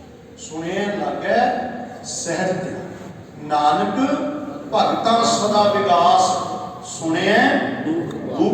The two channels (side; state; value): both; identical; correlation 1.00